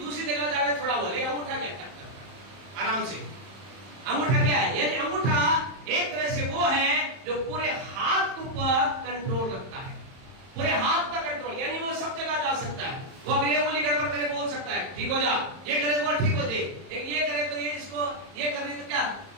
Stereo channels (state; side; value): late; left; 31 ms